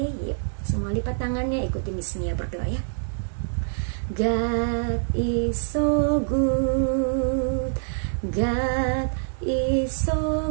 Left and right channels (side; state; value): left; silent; 56 dB below the other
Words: yuk. Semua lipat tangannya, ikuti Miss Mia berdoa ya. God is so good. God is